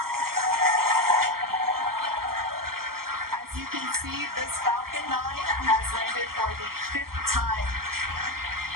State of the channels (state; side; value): late; left; 0.92 ms